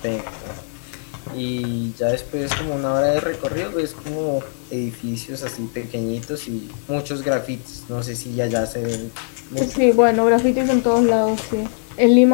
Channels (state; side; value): silent; right; 60 dB below the other